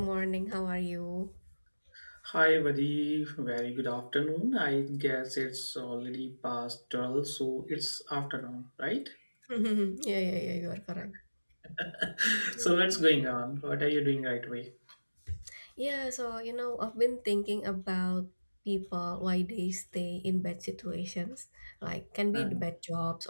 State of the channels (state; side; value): inverted; both; correlation -1.00